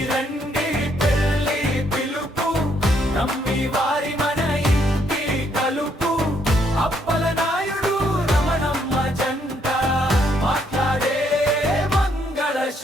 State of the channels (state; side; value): normal; both; correlation 0.71